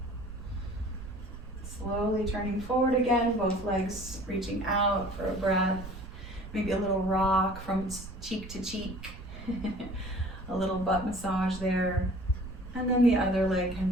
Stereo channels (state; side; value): noise; right; rumble, 13 dB below the sound